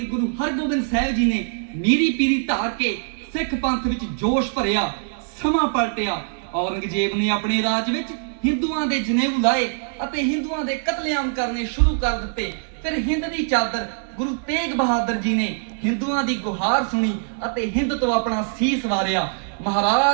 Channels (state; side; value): silent; left; digital silence